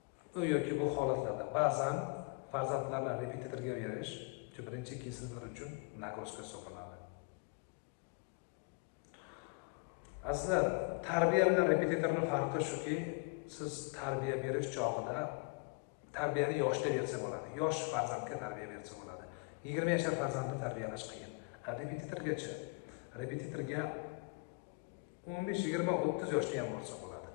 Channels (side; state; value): right; quieter; 31.6 dB